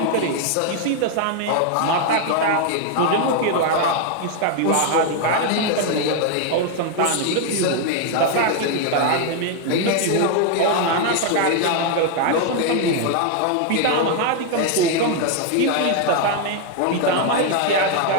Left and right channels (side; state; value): both; different; correlation 0.00